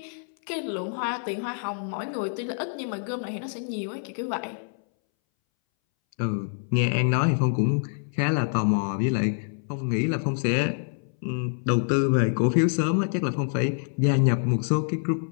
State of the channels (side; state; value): right; silent; 61 dB below the other